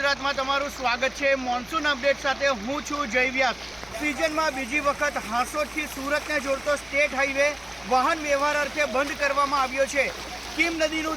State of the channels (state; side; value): noise; right; hum, 30 dB below the sound